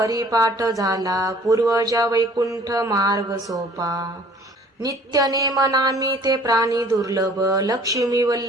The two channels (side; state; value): both; normal; correlation 0.53